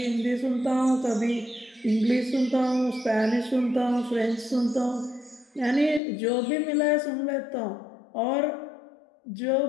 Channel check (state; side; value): drops out; right; at 6.0 s